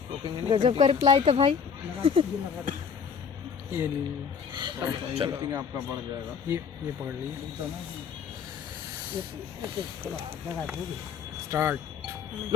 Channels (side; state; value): right; quieter; 6.6 dB